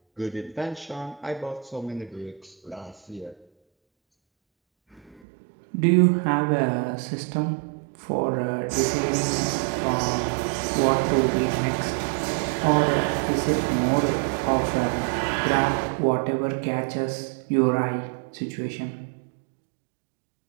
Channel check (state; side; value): drops out; left; at 5.2 s